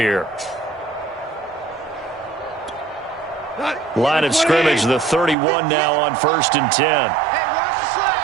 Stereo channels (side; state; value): left; drops out; at 5.4 s